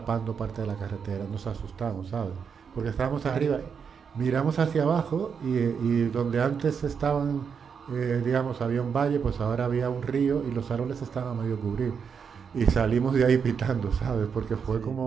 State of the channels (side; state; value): left; quieter; 6.5 dB